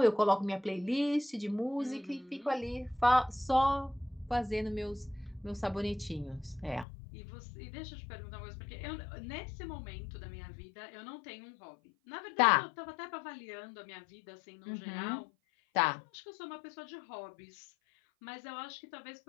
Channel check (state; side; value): drops out; right; at 6.9 s